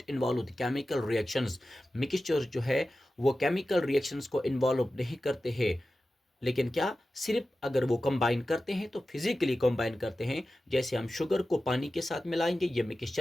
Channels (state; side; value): normal; both; correlation 0.94